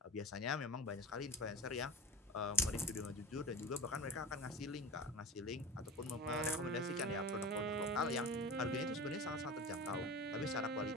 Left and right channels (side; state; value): both; normal; correlation 0.31